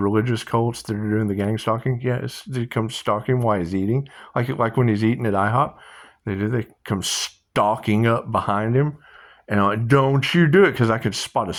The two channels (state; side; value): identical; both; correlation 1.00